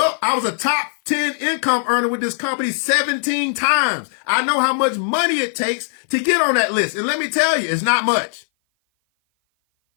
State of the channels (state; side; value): silent; right; 57 dB below the other